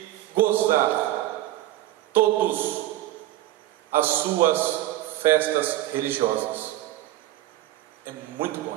gozar todas as suas festas religiosas. É muito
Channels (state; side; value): quieter; left; 14.8 dB